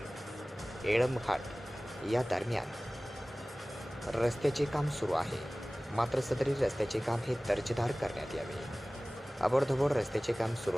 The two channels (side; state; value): both; normal; correlation 0.98